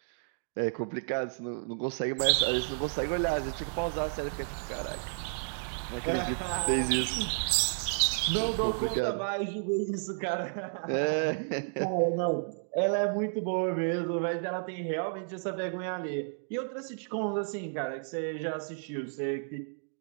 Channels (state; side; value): silent; left; digital silence